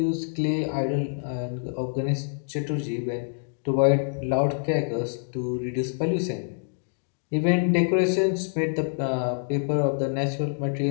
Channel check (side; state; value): right; silent; digital silence